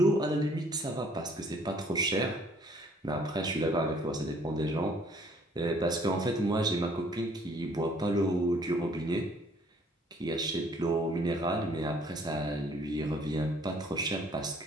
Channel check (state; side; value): normal; both; correlation 0.60